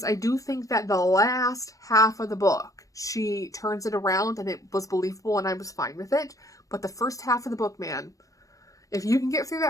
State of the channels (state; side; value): late; right; 0.16 ms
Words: I do think that the last half of the book, she turns it around and it was believable and I was fine with it. But the first half of the book, man, if you can get through